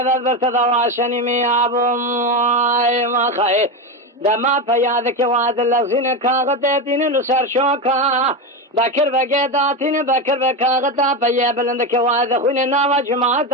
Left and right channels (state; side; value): normal; both; correlation 0.15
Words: برتدواشني ميابو ما خاي دما فيادك واد الذين كاغتين نسر شوكا بكر بقيداتين بكر بكاغتا فيا بلندك واد خوين ناوا جماعت